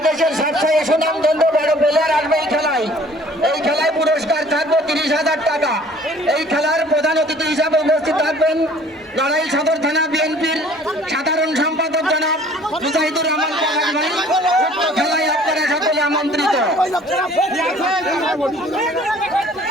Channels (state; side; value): normal; both; correlation 0.53